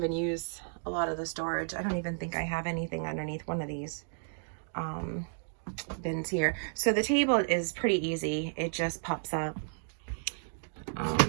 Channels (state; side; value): silent; left; digital silence